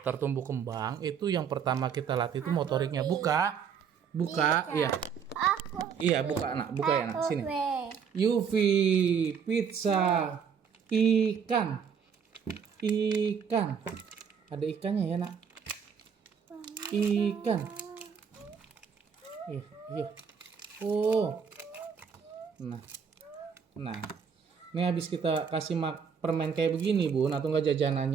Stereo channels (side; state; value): left; quieter; 6.9 dB